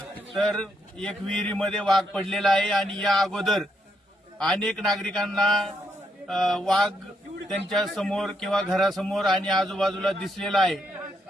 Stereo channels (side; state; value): both; normal; correlation 0.76